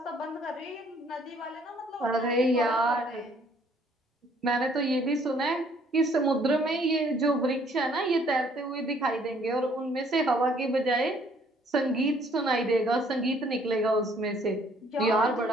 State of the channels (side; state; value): both; normal; correlation 0.62